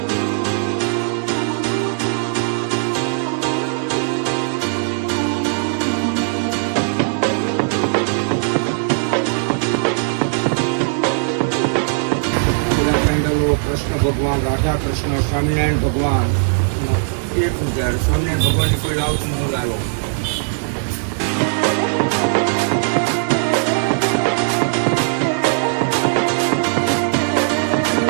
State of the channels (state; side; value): silent; left; digital silence